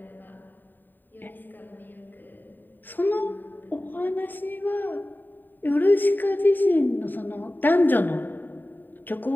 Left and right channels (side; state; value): right; late; 0.091 ms